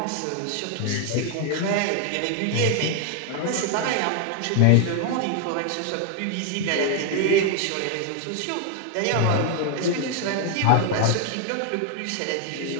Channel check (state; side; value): different; both; correlation 0.00